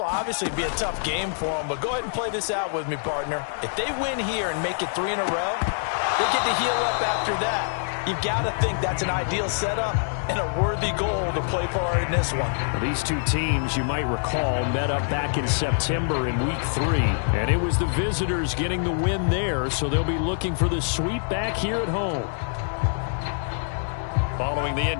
obviously be a tough game for them, but go ahead and play this out with me, partner. If they win here and make it 3 in a row, they get to heal up after that. You've got to think that's an ideal setup and a worthy goal to play for in this one. Well, these two teams, you might recall, met up back in September in Week 3, and it was the visitors getting the win there, so they'll be looking for the sweep back here at home. Following the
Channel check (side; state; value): right; silent; digital silence